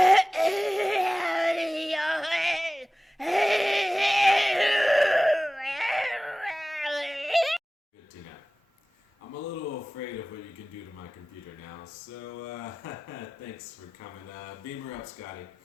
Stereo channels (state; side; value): normal; both; correlation 0.97